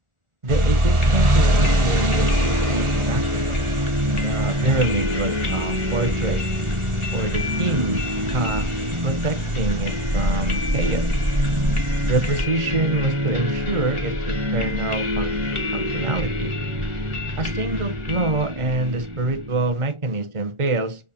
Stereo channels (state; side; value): late; left; 1.4 ms